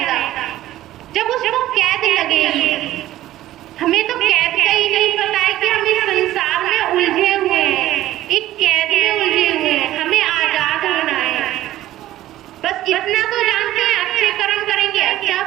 जब उसको कैद लगेगी। हमें तो कैद का ही नहीं पता है कि हम इस संसार में उलझे हुए हैं, एक कैद में उलझे हुए हैं, हमें आजाद होना है। बस इतना तो जानते हैं, अच्छे कर्म करेंगे अच्छा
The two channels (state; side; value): quieter; left; 14.4 dB